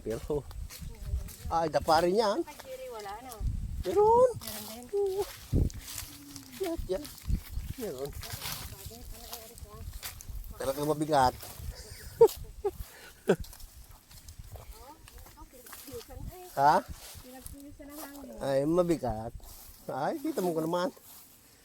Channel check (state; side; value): identical; both; correlation 1.00